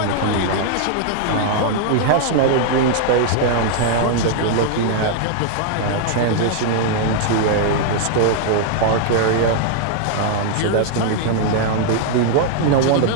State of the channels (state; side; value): different; both; correlation 0.00